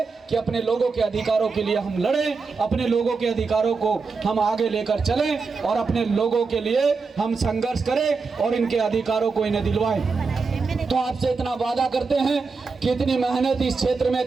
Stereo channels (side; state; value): left; quieter; 4.6 dB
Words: कि अपने लोगों के अधिकारों के लिए हम लड़ें, अपने लोगों के अधिकारों को हम आगे लेकर चलें और अपने लोगों के लिए हम संघर्ष करें और इनके अधिकारों को इन्हें दिलवाएं। तो आपसे इतना वादा करते हैं कि इतनी मेहनत इस क्षेत्र में